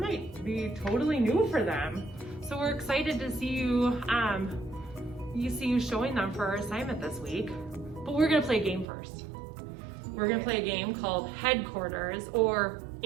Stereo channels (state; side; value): drops out; left; at 8.8 s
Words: be totally new for them. So we're excited to see you, showing them for our assignment this week. But we're gonna play a game first. We're gonna play a game called Headquarters, or